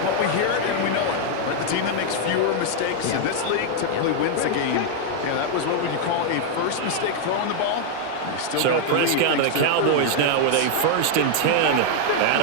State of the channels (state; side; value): different; both; correlation 0.00